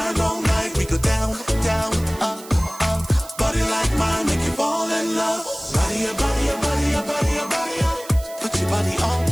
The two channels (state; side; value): noise; right; hiss, 17 dB below the sound